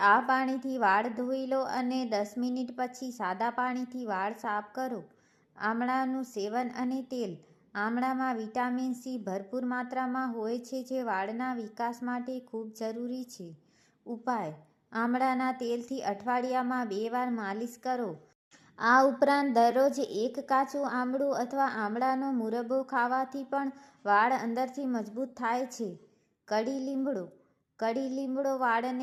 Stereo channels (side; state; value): both; identical; correlation 1.00